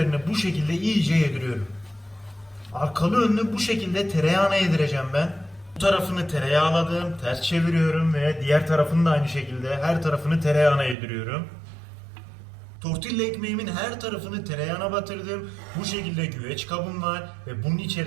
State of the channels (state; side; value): drops out; left; at 11.0 s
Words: bu şekilde iyice yediriyorum. Arkalı önlü bu şekilde tereyağını yedireceğim ben. Bu tarafını tereyağladım, ters çeviriyorum ve diğer tarafını da aynı şekilde her tarafını tereyağına yediriyorum. Tortilla ekmeğimin her tarafını tereyağına batırdım. Bu şekilde güveç kabım var ve bunun